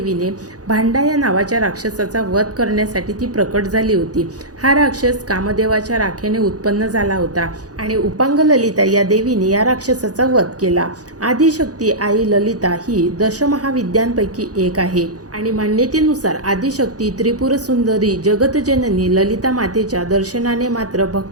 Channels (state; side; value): late; left; 0.67 ms